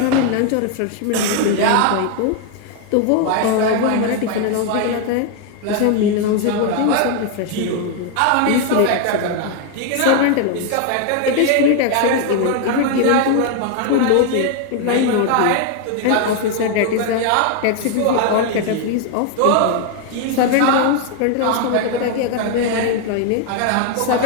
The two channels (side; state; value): both; different; correlation 0.01